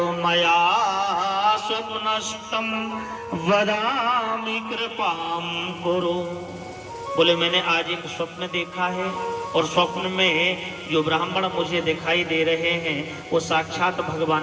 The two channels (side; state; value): both; identical; correlation 1.00